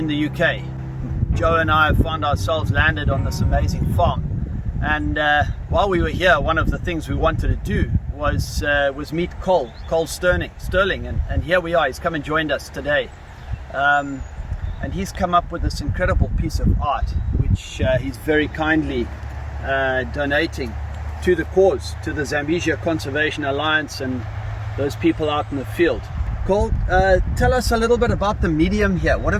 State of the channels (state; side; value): identical; both; correlation 1.00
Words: the UK. Joe and I found ourselves landed on this amazing farm, and while we were here, one of the things we wanted to do was meet Cole Stirling, and here we are. He's come and joined us today, and he's come up with this incredible piece of art, which he's very kindly donating to the cause, to the Zambesia Conservation Alliance and those people out in the field. Cole, tell us a little bit about the medium here. What